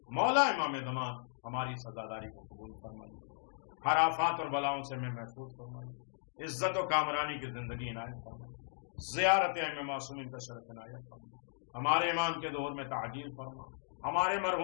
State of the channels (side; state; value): right; silent; digital silence